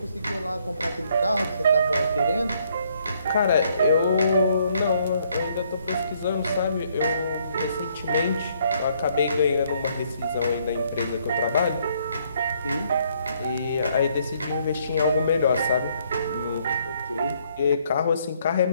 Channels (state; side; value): inverted; both; correlation -0.68